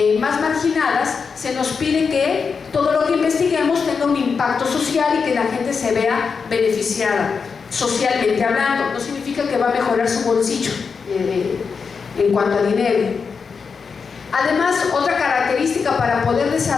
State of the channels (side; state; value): right; quieter; 5.5 dB